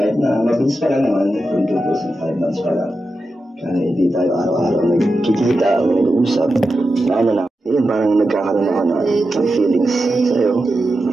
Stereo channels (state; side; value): normal; both; correlation 0.90